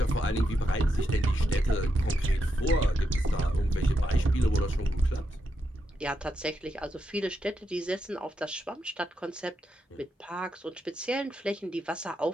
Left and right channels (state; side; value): normal; both; correlation 0.84